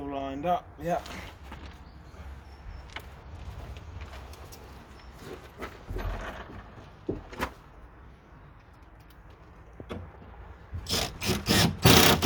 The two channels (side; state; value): both; identical; correlation 1.00